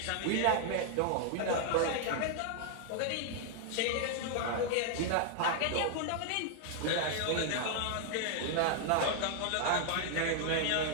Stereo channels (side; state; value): both; different; correlation 0.00